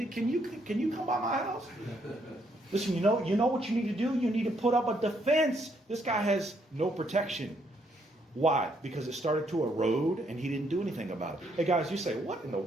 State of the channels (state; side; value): normal; both; correlation 0.72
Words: can you come by my house? Listen, you know what you need to do? You need to put up a defense. This guy has no protection. Why? Because it started to erode and he didn't do anything about it. Hey guys, you say, what in the